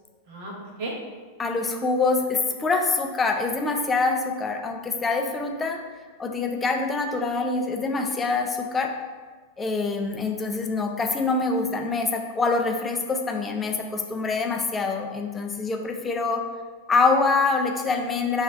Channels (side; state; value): right; quieter; 3.4 dB